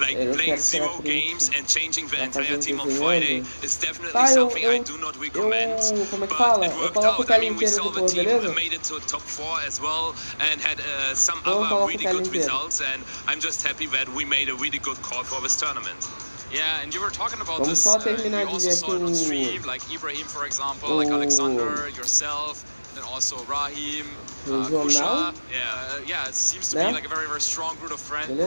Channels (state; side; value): inverted; both; correlation -1.00